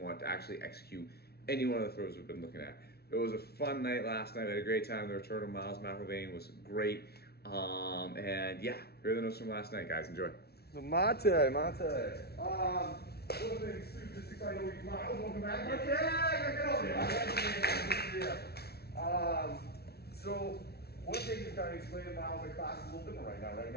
want to actually execute any one of the throws we've been looking at. It was a fun night last night. We had a great time. The return of Miles McIlvain was great. And yeah, here are the notes from last night, guys. Enjoy. So Mate. One of the things too, just excited to Miles, welcome back. Mate, get over here. So one thing is kind of explaining Miles, the class is a little different right now. Right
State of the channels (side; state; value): right; late; 0.46 ms